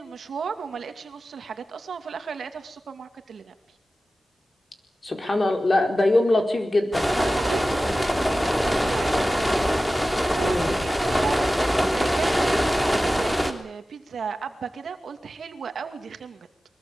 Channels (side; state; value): both; normal; correlation 0.95